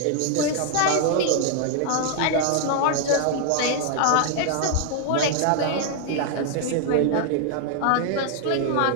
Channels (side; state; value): both; different; correlation 0.00